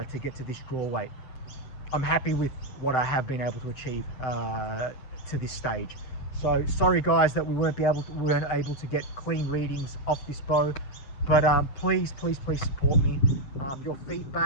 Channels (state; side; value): late; right; 7.7 ms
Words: to get to this draw weight. I'm happy with what I have been able to achieve to this stage. So sorry guys that we weren't able to get clean readings off this bow, but please support me. Your